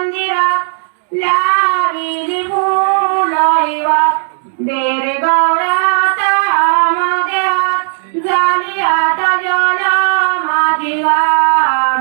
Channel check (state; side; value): silent; left; 61 dB below the other